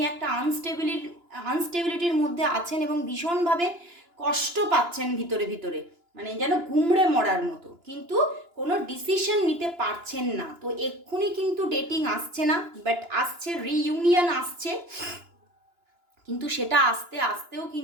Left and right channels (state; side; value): late; left; 2.9 ms